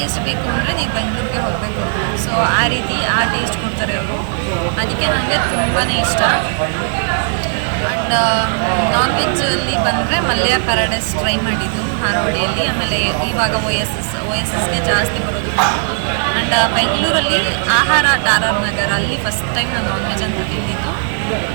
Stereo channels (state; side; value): silent; left; 66 dB below the other